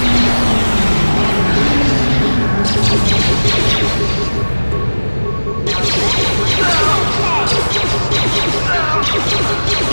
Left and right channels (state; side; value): inverted; both; correlation -1.00